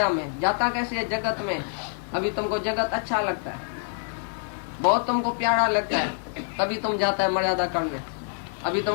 में, जाता कैसे है जगत में? अभी तुमको जगत अच्छा लगता है, बहुत तुमको प्यारा लगता है, तभी तुम जाता है मर्यादा करने। अभी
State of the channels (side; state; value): right; silent; 61 dB below the other